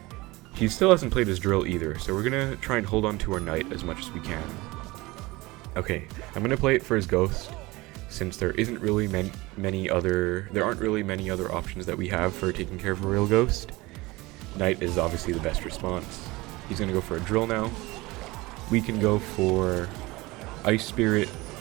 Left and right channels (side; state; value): left; quieter; 21.5 dB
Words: He still hasn't played his Drill either, so we're going to try and hold on to our Knight as much as we can. Okay, I'm going to play it for his Ghost, since there isn't really many other options that we have for taking care of a real Ghost. Knight is obviously the best response. He's going to go for a Drill now. We can go for Ice Spirit